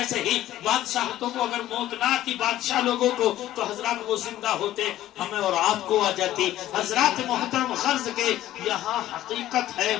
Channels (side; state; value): right; quieter; 13.8 dB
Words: ہی بادشاہتوں کو اگر موت نہ آتی، بادشاہ لوگوں کو، تو حضرات وہ زندہ ہوتے، ہمیں اور آپ کو آ جاتی۔ حضرات محترم، غرض کے یہاں حقیقت ہے،